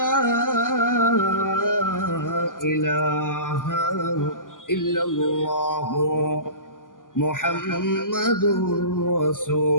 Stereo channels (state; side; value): late; right; 0.89 ms